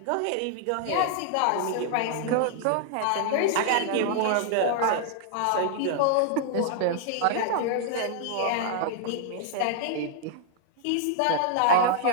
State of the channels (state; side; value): different; both; correlation -0.01